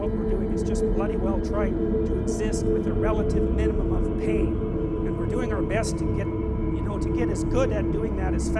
we're doing is just bloody well trying to exist with a relative minimum of pain. And we're doing our best to get as good at doing that as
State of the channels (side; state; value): both; identical; correlation 1.00